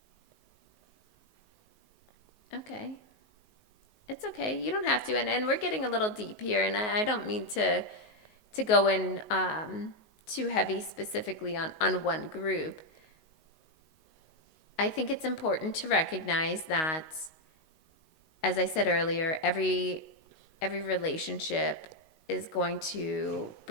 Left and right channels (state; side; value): late; right; 19 ms